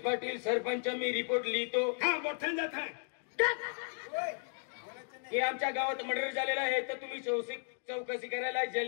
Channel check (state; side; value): silent; right; 55 dB below the other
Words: पाटील सरपंच मी रिपोर्ट लिहितो हा मोठ्यान जात आहे की आमच्या गावात मर्डर झालेला आहे तर तुम्ही चौकशी करायला